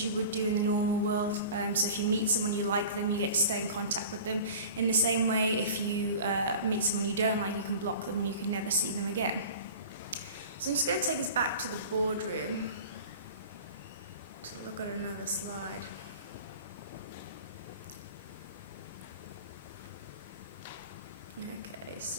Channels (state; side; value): inverted; both; correlation -0.39